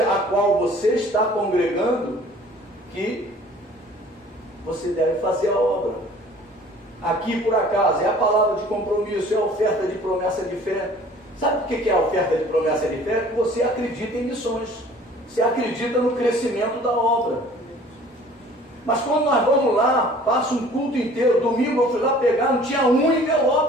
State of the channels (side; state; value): both; normal; correlation 0.50